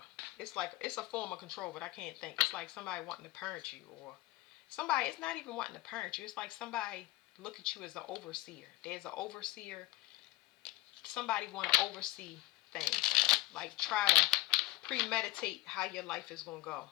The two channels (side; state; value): right; quieter; 18.3 dB